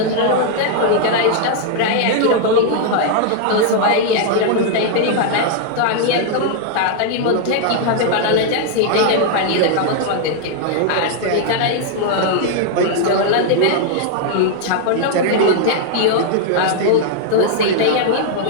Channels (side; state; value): both; different; correlation 0.00